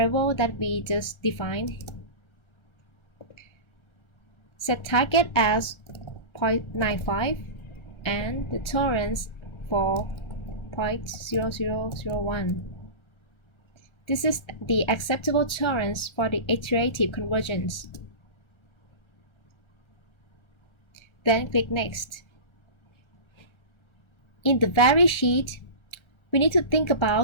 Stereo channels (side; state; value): right; late; 1.4 ms